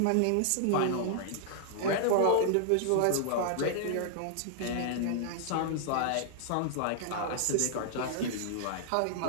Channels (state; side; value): different; both; correlation -0.01